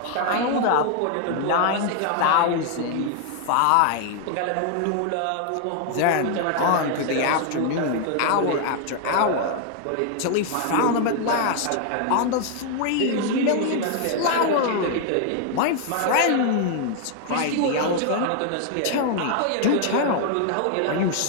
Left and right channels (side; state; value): both; different; correlation 0.00